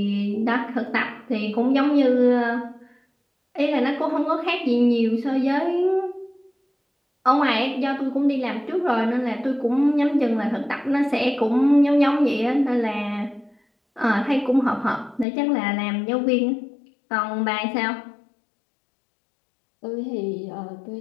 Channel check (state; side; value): drops out; right; at 15.2 s